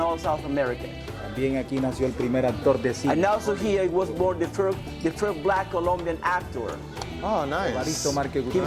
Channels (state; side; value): identical; both; correlation 1.00